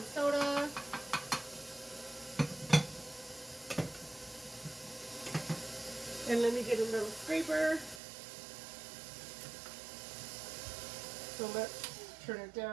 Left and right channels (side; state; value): left; drops out; at 8.0 s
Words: soda. And let me get a little scraper. So let's turn it